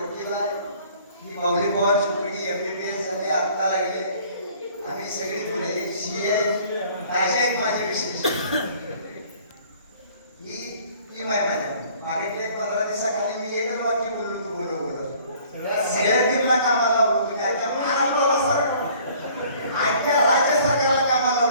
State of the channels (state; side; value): inverted; both; correlation -0.54